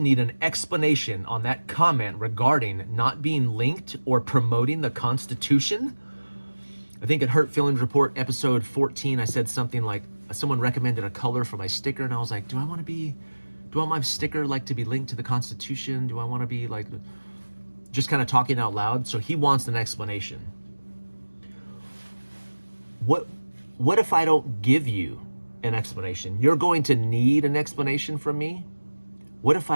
an explanation on that comment regarding not being linked or promoting the Constitution. I think at Hurt Feelings Report episode 14, I said something like, someone recommended a color for my sticker, and I was like, do I want my sticker like to be linked to the Constitution? Do I want to be like, just kind of talking out loud? So he wants an explanation. What if I don't give you an explanation? You're going to need an explanation from me. What if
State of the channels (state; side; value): inverted; both; correlation -1.00